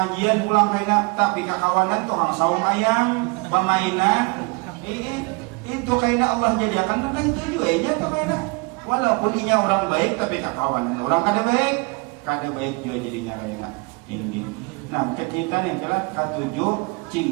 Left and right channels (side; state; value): left; quieter; 29.6 dB